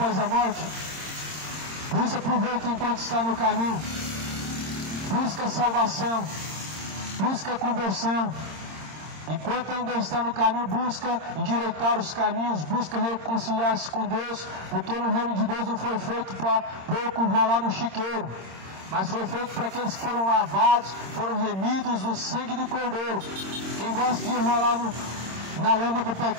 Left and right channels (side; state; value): left; late; 26 ms